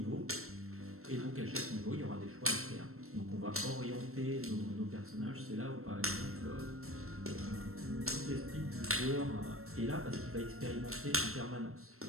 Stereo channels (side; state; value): left; late; 0.63 ms